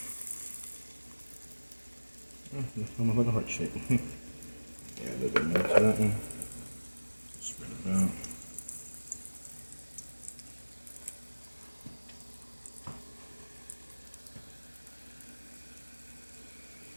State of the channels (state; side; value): inverted; both; correlation -1.00